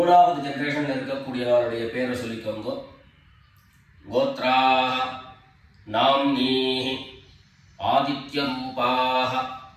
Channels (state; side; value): identical; both; correlation 1.00